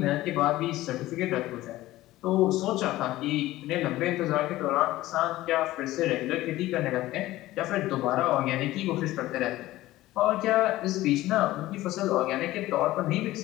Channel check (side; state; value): right; quieter; 16.6 dB